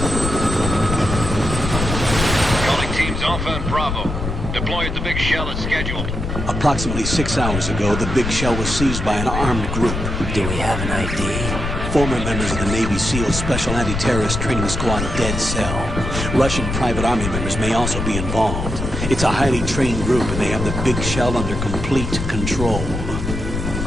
Calling teams Alpha and Bravo. Deploy at the Big Shell as scheduled. Approximately 6 hours ago, the Big Shell was seized by an armed group. Do we have an ID? Former members of the Navy SEAL Special Anti-Terrorist Training Squad Dead Cell. Russian private army members may also be involved. It's a highly trained group and they have the Big Shell under complete control.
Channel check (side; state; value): left; noise; rumble, 4 dB below the sound